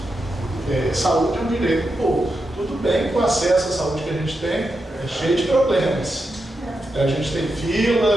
Saúde é um direito do povo. Tudo bem que o acesso à saúde que a gente tem é cheio de problemas. A gente tem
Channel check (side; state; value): both; normal; correlation 0.87